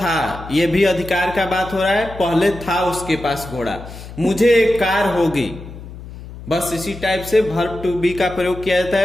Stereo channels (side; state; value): left; noise; hum, 14 dB below the sound